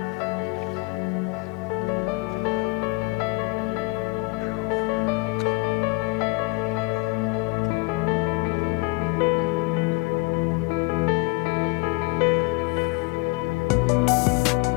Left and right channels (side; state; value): right; quieter; 27.6 dB